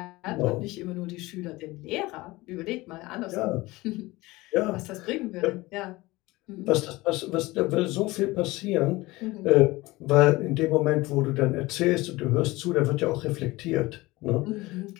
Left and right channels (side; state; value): right; quieter; 20.6 dB